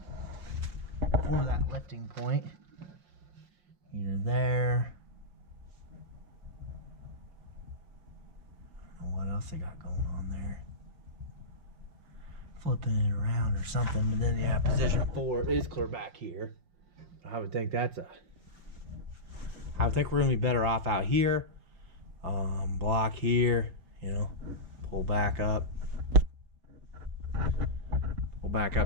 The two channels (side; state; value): left; late; 5.6 ms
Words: that lifting point. Either there else they got going on there. Flipping it around or something, but then yeah, position 4 is clear back here. I would think I would think we're gonna be better off out here. Block here, you know, pull back up